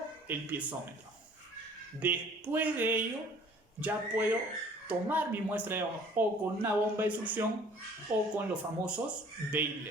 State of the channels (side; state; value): both; normal; correlation 0.52